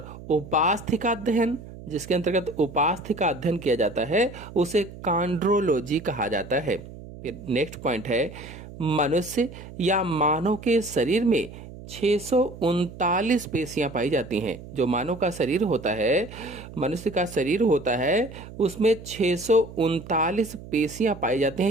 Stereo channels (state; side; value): noise; right; hum, 15 dB below the sound